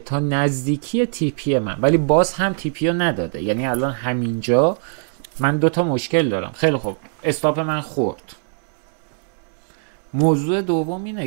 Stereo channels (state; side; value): silent; left; 65 dB below the other